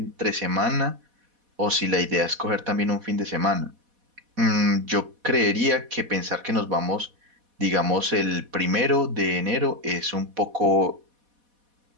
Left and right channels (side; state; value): left; late; 4.1 ms